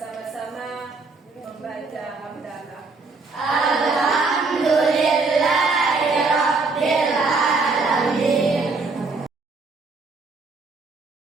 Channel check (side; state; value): left; quieter; 3.9 dB